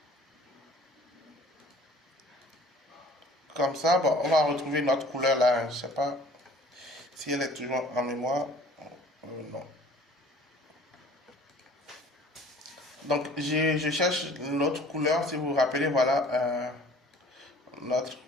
comme ça. Bon, on va retrouver notre couleur là. Je ne sais pas si elle est toujours en mémoire. Non. Donc, je cherche l'autre couleur. Si vous vous rappelez, voilà notre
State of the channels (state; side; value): normal; both; correlation 0.50